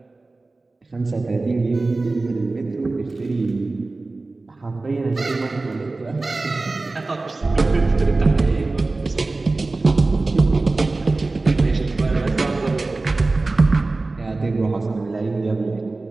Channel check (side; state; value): left; quieter; 3.4 dB